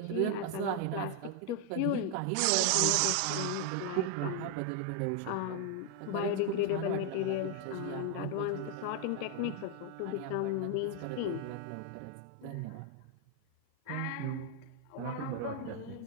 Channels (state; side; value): different; both; correlation 0.00